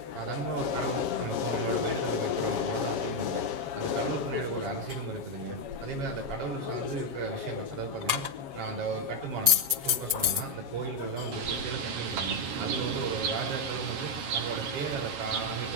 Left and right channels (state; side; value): late; left; 7.4 ms